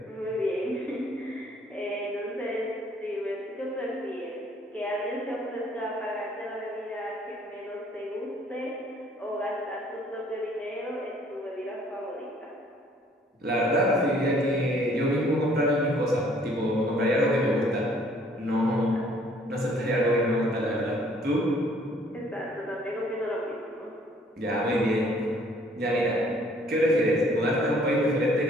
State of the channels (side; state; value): both; normal; correlation 0.60